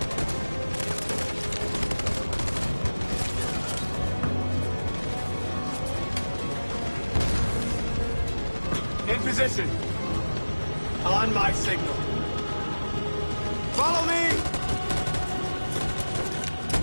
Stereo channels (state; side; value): inverted; both; correlation -1.00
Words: In position. On my signal. Follow me!